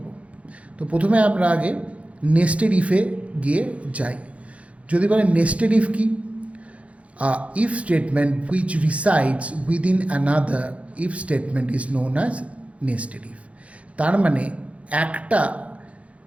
তো প্রথমে আমরা আগে নেস্টেড ইফে গিয়ে যাই। যদি বলে নেস্টেড ইফ কি, if statement which resides within another if statement is known as nested if. তার মানে একটা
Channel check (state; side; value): late; left; 0.064 ms